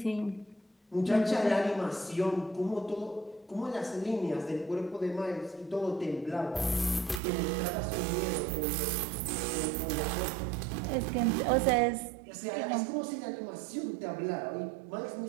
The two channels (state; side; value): drops out; left; at 7.2 s